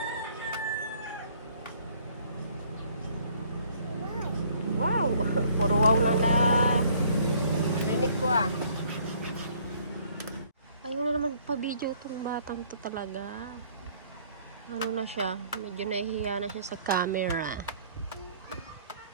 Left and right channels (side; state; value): both; inverted; correlation -0.60